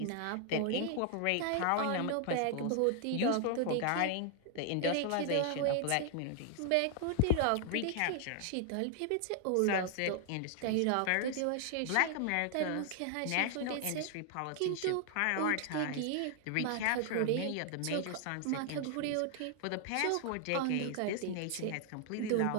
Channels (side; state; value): both; different; correlation 0.00